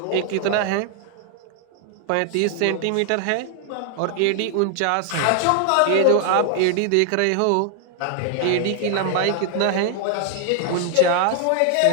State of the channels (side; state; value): both; different; correlation 0.00